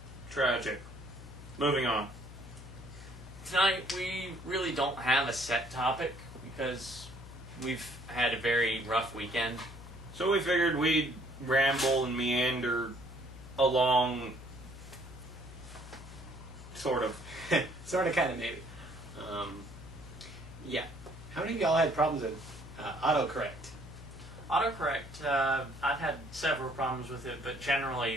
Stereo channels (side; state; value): left; noise; hum, 14 dB below the sound